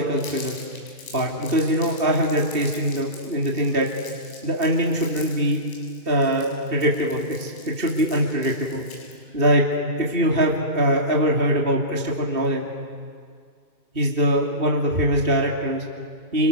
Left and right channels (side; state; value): left; late; 2.7 ms